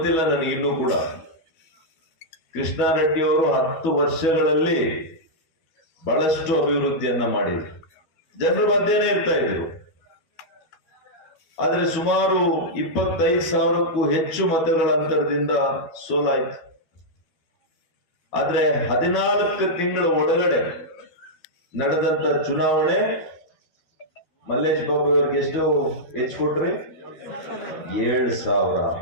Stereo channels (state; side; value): late; right; 12 ms